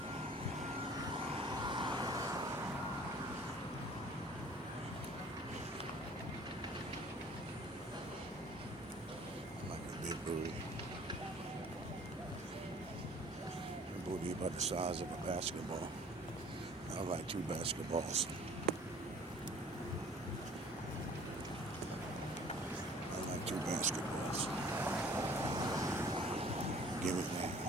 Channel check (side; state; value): both; normal; correlation 0.51